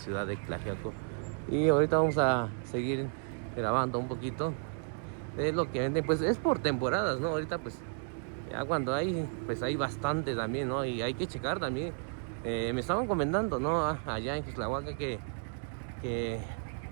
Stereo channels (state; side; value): silent; left; 56 dB below the other